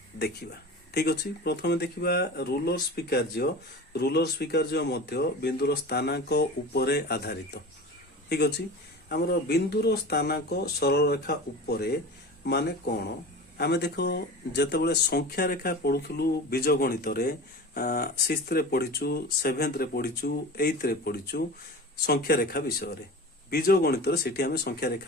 देखिबा। ठीक अच्छे प्रथम देखिबा रूलर स्वीकार्य मध्य बिंदुर स्थानांक उपरे आधारित। ठीक अच्छे आमर बिंदुर स्थानांक सरल रेखा उपरे माने कौन आमे देखो जेतेबेले संख्या रेखा पढ़ुथुलु बीजगणित रे 6th रे पढ़िचु 7th रे पढ़िचु 8th रे पढ़िचु संख्या रेखा विषय रे बीजगणित रे सेठी आमे संख्या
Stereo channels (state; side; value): normal; both; correlation 0.33